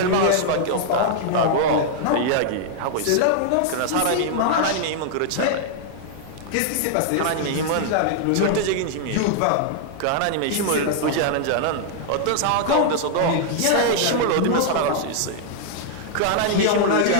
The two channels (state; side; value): different; both; correlation -0.01